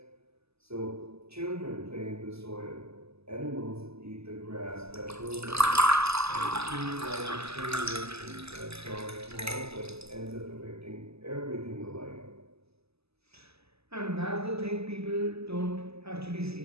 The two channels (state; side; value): late; left; 0.79 ms